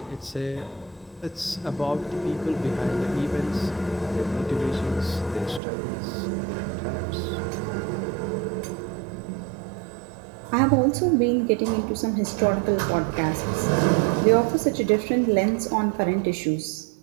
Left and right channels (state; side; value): drops out; left; at 5.6 s